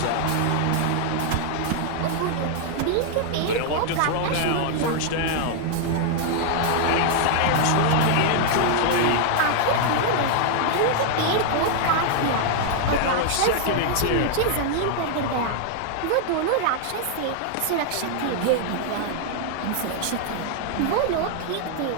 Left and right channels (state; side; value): different; both; correlation 0.00